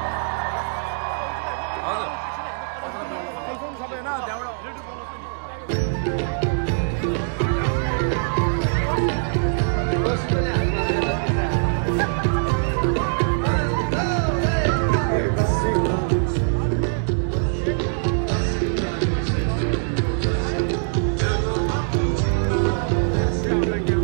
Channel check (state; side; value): silent; left; digital silence